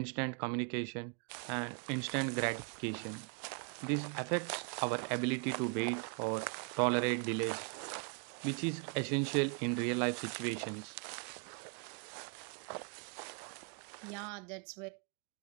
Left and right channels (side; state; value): left; quieter; 38.6 dB